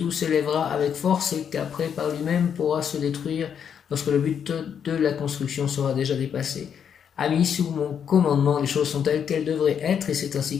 s'élèvera avec force et qu'après par lui-même pourra se détruire lorsque le but de la construction sera déjà dépassé. Ami, sous mon commandement, les choses sont telles qu'elles devraient être et c'est ainsi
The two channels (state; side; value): quieter; right; 7.9 dB